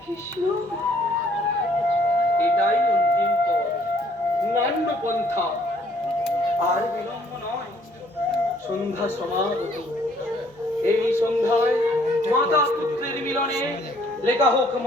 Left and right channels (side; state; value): both; normal; correlation 0.63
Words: কৃষ্ণ, এটাই অন্তিম পথ, নান্য পন্থা। আর বিলম্ব নয়, সন্ধ্যা সমাগত। এই সন্ধ্যায় মাতা পুত্রের মিলনে লেখা হোক